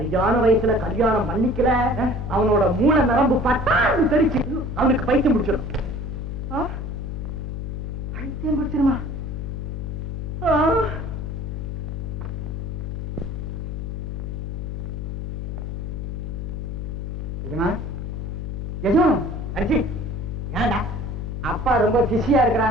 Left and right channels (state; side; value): noise; left; hum, 4 dB below the sound